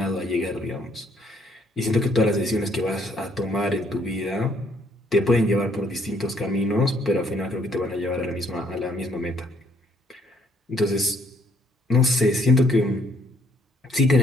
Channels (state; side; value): normal; both; correlation 0.66